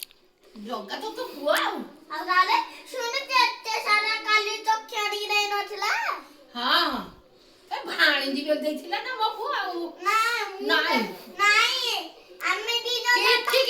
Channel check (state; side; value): identical; both; correlation 1.00